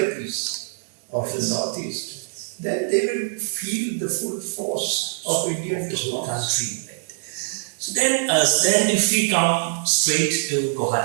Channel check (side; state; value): left; silent; digital silence